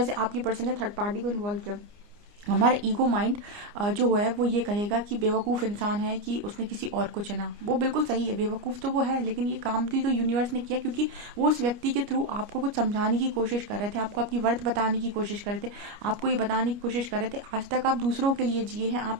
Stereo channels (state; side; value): late; left; 29 ms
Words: से आपकी पर्सन ने थर्ड पार्टी को इन्वॉल्व किया। हमारा ईगो माइंड जो है वो ये कहेगा कि बेवकूफ़ इंसान है कि उसने किसी और को चुना। वो बिल्कुल सही है, बेवकूफ़ तो वो है, लेकिन ये काम भी तो यूनिवर्स ने किया, क्योंकि वो उस व्यक्ति के थ्रू आपको कुछ समझाने की कोशिश कर रहे थे, आपको आपकी वर्थ बताने की कोशिश कर रहे थे, आपको ये बताने की कोशिश कर रहे थे आज तक आप दूसरों के लिए जिए हैं, आप